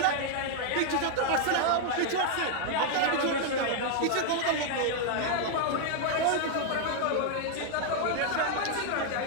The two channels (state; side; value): different; both; correlation 0.00